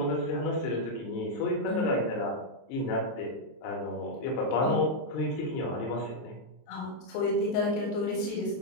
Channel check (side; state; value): right; late; 23 ms